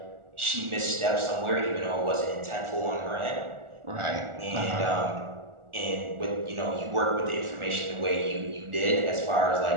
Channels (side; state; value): left; late; 1.4 ms